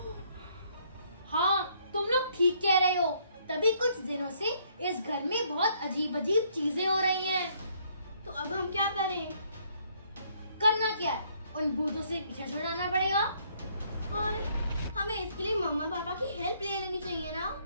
हाँ, तुम लोग ठीक कह रहे हो। तभी कुछ दिनों से इस घर में बहुत अजीब अजीब चीजें हो रही हैं। तो अब हम क्या करें? करना क्या है? उन भूतों से पीछे छुड़ाना पड़ेगा। और हमें इसके लिए मम्मा पापा की हेल्प ले लेनी चाहिए ना?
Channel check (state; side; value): inverted; both; correlation -0.67